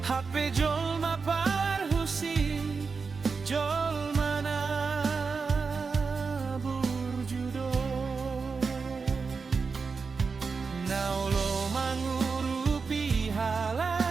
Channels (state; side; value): quieter; left; 4.9 dB